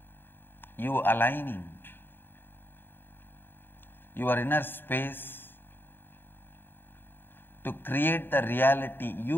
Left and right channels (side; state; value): right; late; 0.098 ms